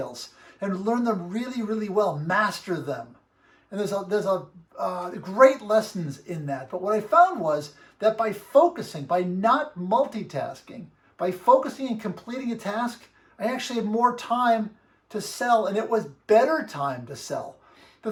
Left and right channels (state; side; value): identical; both; correlation 1.00